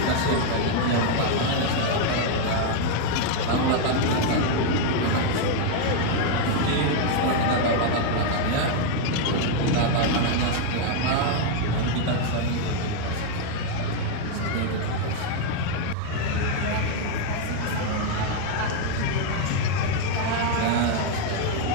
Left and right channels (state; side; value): different; both; correlation 0.01